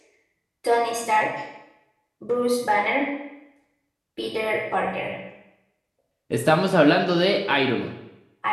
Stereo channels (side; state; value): both; identical; correlation 1.00